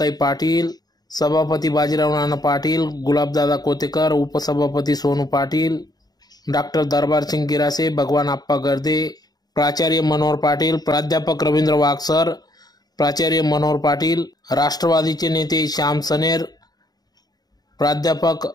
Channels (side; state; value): right; late; 0.19 ms